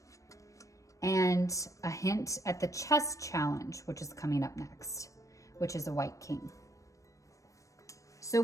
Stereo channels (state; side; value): late; right; 0.16 ms